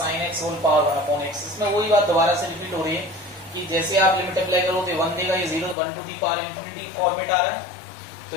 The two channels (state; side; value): drops out; right; at 5.8 s